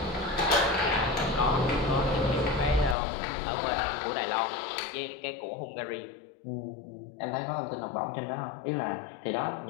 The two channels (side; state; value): right; drops out; at 3.0 s